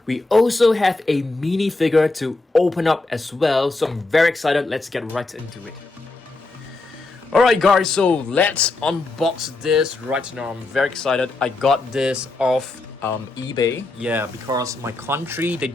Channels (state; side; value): quieter; right; 3.3 dB